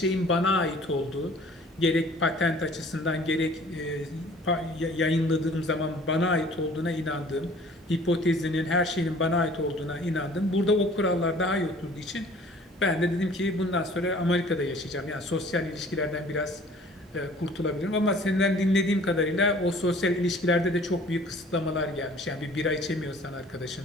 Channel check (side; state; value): both; normal; correlation 0.51